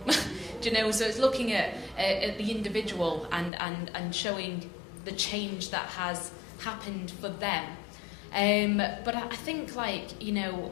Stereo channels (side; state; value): right; drops out; at 3.5 s